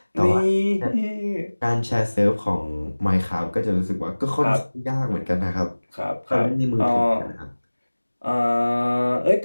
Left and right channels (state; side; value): inverted; both; correlation -1.00